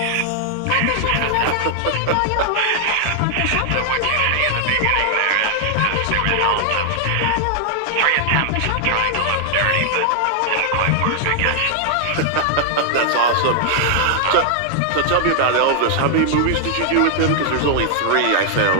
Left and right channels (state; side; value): different; both; correlation 0.00